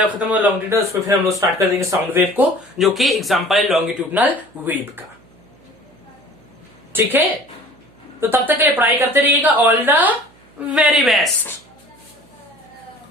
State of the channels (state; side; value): noise; right; hum, 29 dB below the sound